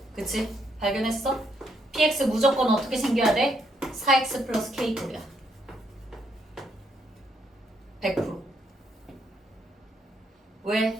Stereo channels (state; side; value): normal; both; correlation 0.74